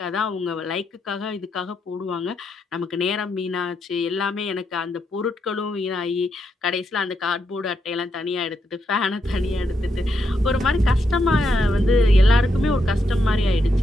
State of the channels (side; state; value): both; normal; correlation 0.81